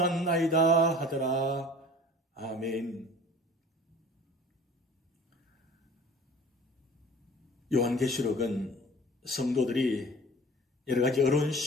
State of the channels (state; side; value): normal; both; correlation 0.44